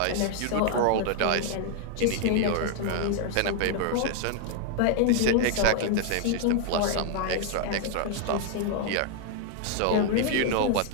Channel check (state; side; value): different; both; correlation 0.00